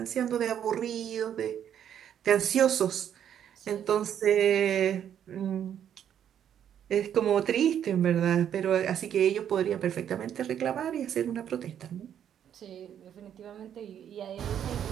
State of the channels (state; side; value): quieter; left; 9.5 dB